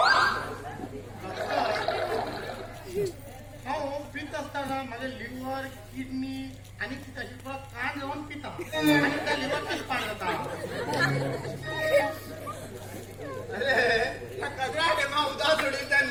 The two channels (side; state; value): both; identical; correlation 1.00